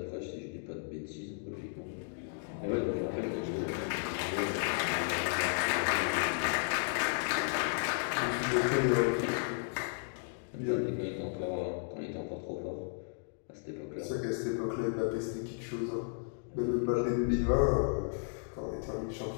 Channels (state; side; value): silent; right; digital silence